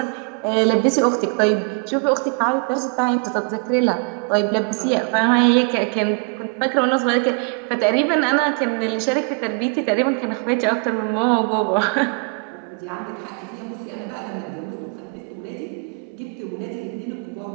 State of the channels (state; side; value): quieter; left; 36.4 dB